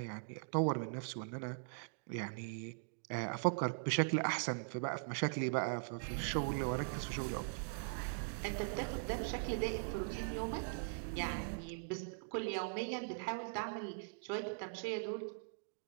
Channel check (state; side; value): silent; left; digital silence